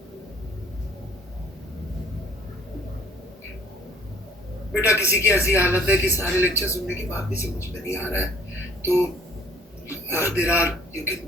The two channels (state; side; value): normal; both; correlation 0.56